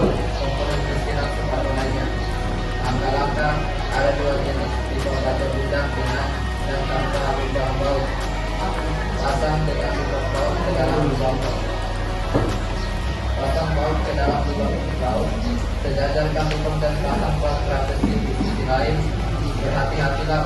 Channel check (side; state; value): both; identical; correlation 1.00